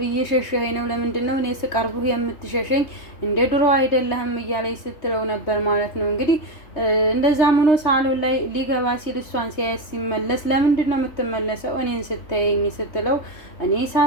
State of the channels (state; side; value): late; right; 3.2 ms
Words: እየሸሸኸኝ ነው፣ ለምንድን ነው እኔ ስቀርብህ የምትሸሸኝ? እንደ ድሮ አይደለህም እያለች ስትለው ነበር ማለት ነው። እንግዲህ እንደዛም ሆኖ ሳሎን ላይ ሊገባ ሲል እሷን ሲያየት ሲመለስ ለምንድን ነው የምትመለሰው እኔን ስታየኝ ስትለው እኔ